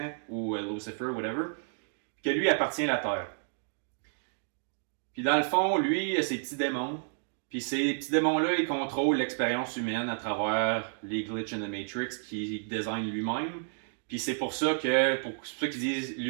ou Lucifer, whatever, que lui appartient à la terre. Puis dans le fond, lui, il a ses petits démons. Puis ces petits démons-là, ils contrôlent l'expérience humaine à travers les glitches in the Matrix qu'il design lui-même. Puis c'est pour ça que, pour ceux qui disent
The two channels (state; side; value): silent; left; digital silence